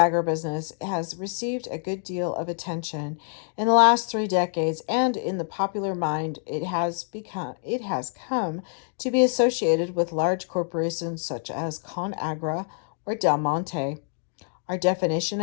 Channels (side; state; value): right; silent; digital silence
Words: has received a good deal of attention in the last 3 decades, and in the popular mind it has come to be associated with large corporations such as ConAgra or Del Monte. Our definition